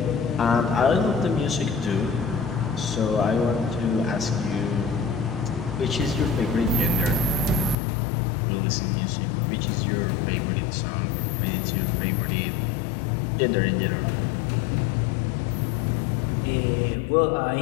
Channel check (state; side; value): drops out; right; at 7.8 s